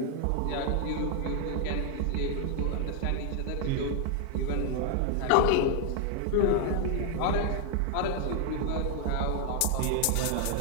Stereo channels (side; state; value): both; different; correlation 0.00